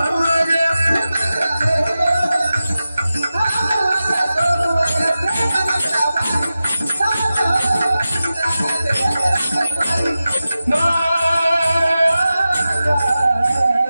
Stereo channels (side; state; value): both; inverted; correlation -0.94